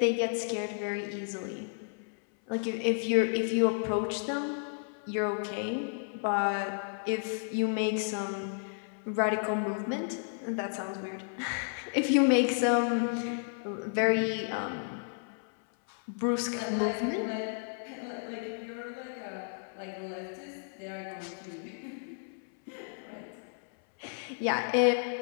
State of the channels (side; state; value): right; silent; 56 dB below the other